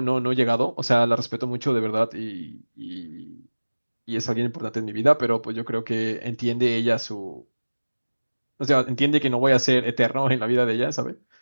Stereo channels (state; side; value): inverted; both; correlation -1.00